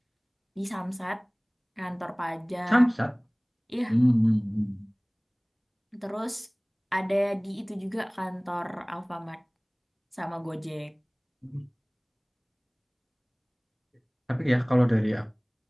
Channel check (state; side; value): identical; both; correlation 1.00